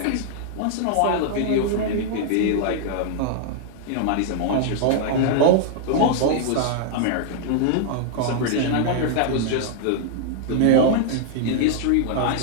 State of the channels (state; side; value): different; both; correlation -0.01